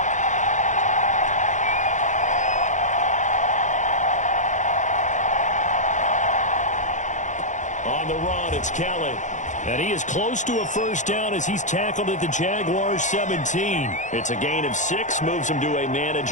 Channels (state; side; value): late; right; 0.35 ms